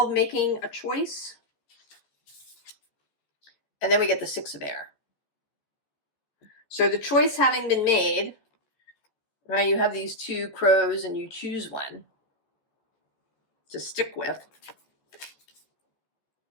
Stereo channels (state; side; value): late; right; 14 ms